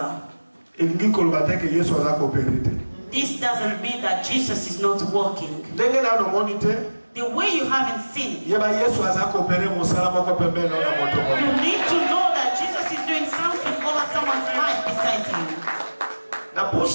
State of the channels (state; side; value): inverted; both; correlation -1.00